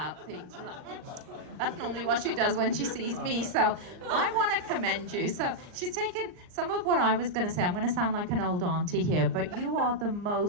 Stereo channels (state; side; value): late; left; 39 ms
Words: things. That's normally what she does when she sees me, so I want to commend you. So she's taken some of what I was going to say. I'm going to sound like an old auntie here, but you are the